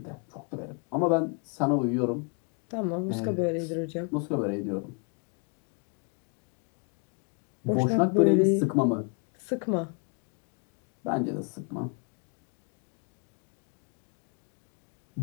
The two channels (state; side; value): quieter; right; 37.2 dB